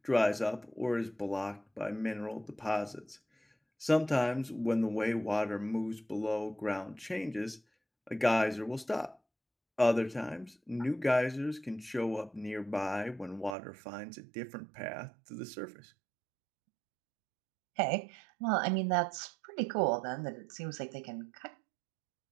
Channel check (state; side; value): drops out; left; at 13.6 s